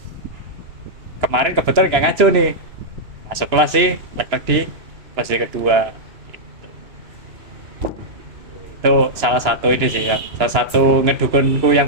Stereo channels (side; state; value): left; late; 2.9 ms